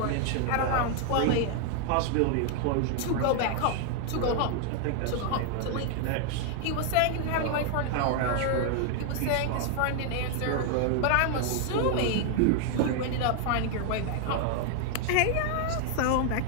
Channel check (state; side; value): different; both; correlation 0.00